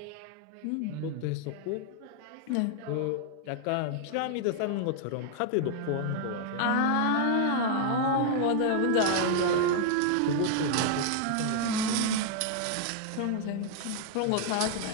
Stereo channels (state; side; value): different; both; correlation 0.00